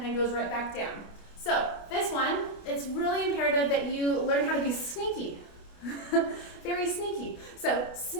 then goes right back down. So this one, it's really imperative that you learn how to be sneaky. Very sneaky. So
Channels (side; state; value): right; late; 28 ms